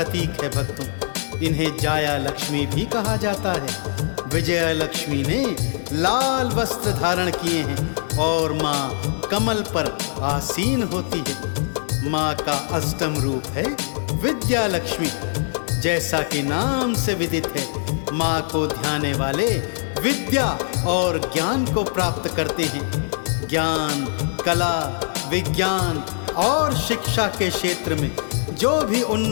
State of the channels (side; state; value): right; silent; 60 dB below the other